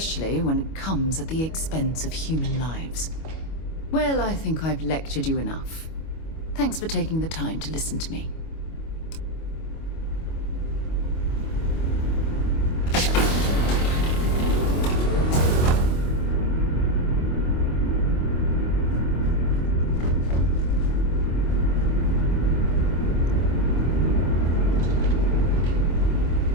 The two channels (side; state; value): right; late; 25 ms